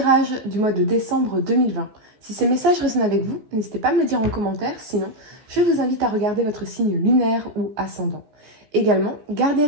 du mois de décembre 2020. Si ces messages résonnent avec vous, n'hésitez pas à me le dire en commentaire, sinon je vous invite à regarder votre signe lunaire ou ascendant. Également, gardez à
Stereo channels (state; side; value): late; left; 14 ms